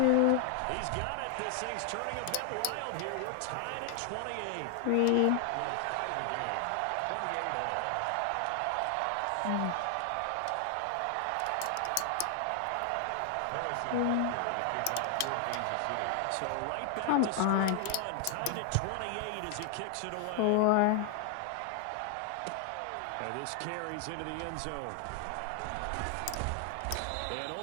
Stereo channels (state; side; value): different; both; correlation 0.00